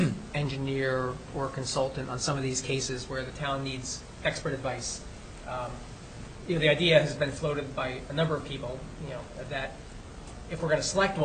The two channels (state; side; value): identical; both; correlation 1.00